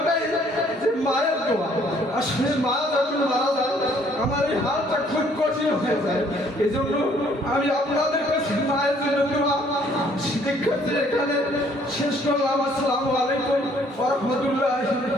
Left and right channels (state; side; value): normal; both; correlation 0.62